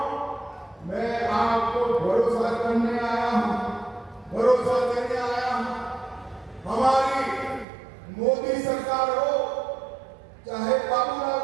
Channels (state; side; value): drops out; left; at 7.7 s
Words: मैं आपको भरोसा करने आया हूं, भरोसा देने आया हूं। हमारी मोदी सरकार हो, चाहे बाबूलाल